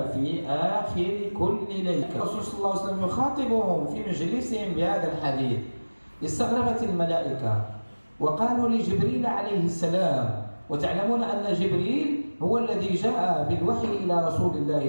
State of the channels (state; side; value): inverted; both; correlation -1.00